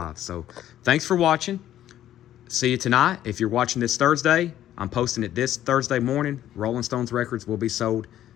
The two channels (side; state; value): right; quieter; 12.1 dB